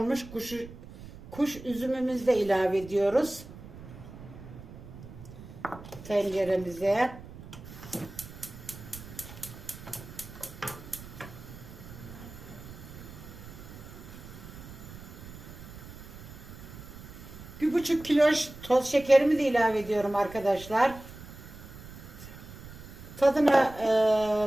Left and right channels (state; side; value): noise; right; rumble, 15 dB below the sound